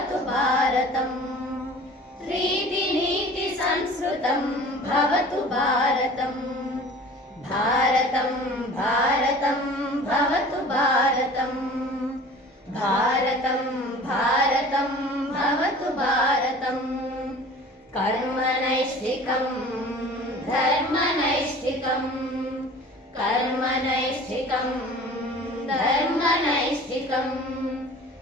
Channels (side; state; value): both; normal; correlation 0.43